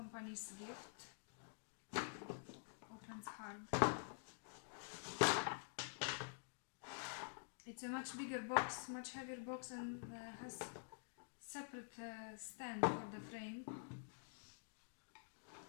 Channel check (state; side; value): silent; right; digital silence